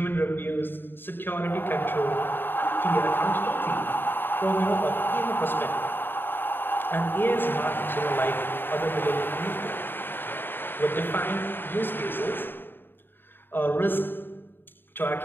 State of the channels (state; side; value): late; right; 0.097 ms